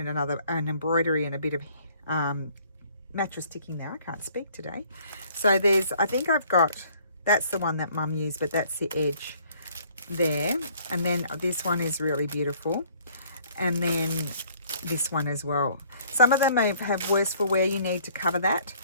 an embroidery and a bit of mattress ticking there. I can't speak today. So I think I've got, that's the one that Mum used, but that's the edge there. And then this one is really beautiful. And then this one as well. Some of them may have worse for wear. You need to cover that.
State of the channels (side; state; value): both; inverted; correlation -0.59